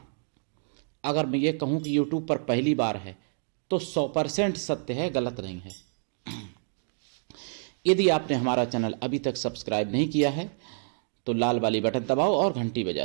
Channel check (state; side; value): silent; left; digital silence